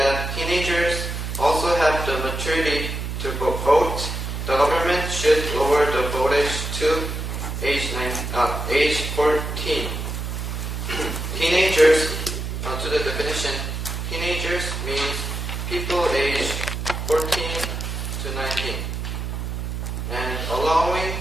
teenagers also have the maturity to vote, the government should lower the vote age to age 14. Teenagers, to the definition, teenagers means people aged 14 to 19. And allowing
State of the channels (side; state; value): right; noise; hum, 4 dB below the sound